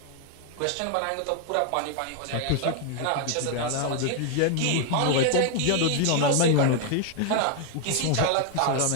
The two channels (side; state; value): both; different; correlation 0.00